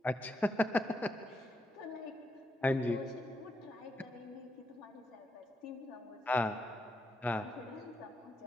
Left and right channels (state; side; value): normal; both; correlation 0.81